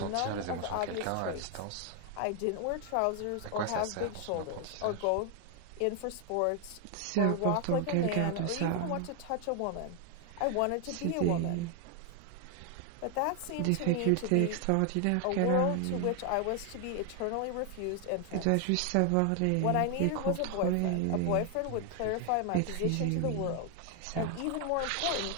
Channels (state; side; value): different; both; correlation 0.00